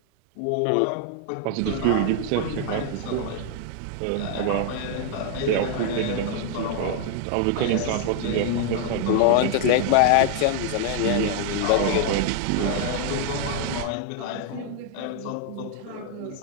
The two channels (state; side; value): different; both; correlation 0.00